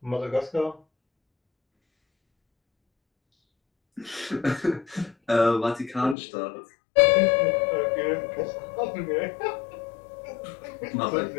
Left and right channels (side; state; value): right; drops out; at 6.2 s